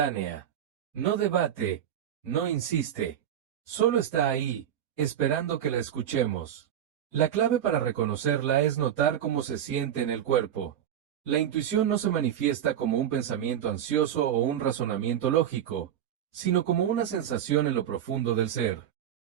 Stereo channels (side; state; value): left; quieter; 10.1 dB